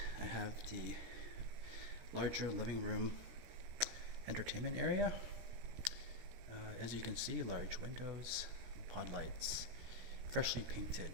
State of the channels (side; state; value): left; late; 17 ms